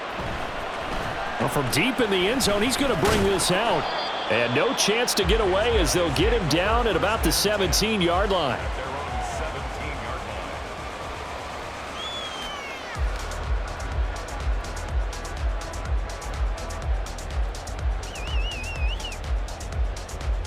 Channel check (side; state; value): both; identical; correlation 1.00